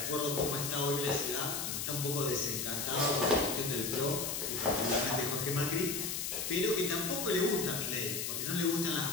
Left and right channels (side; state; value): left; noise; hiss, 2 dB below the sound